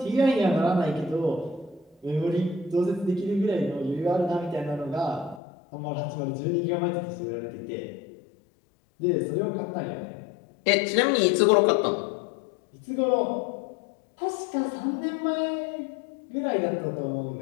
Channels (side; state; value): right; drops out; at 5.4 s